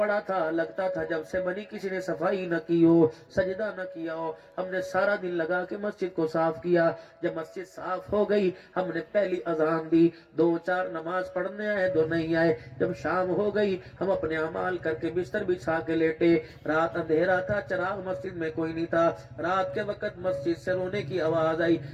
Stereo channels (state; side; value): identical; both; correlation 1.00